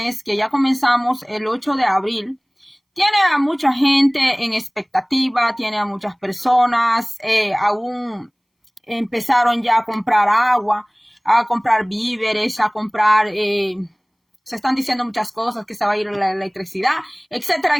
que ya comenzamos el 8 de abril, tiene a mucha gente en expectativa, tiene a muchas personas, aún empezaron ya a comprar agua, a comprar víveres, a comprar, se están diciendo muchas cosas, que se va a ir la electricidad, etcétera,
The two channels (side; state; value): both; identical; correlation 1.00